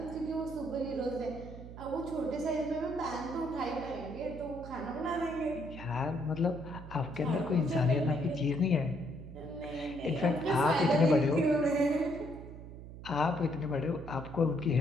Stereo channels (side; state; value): right; noise; hum, 13 dB below the sound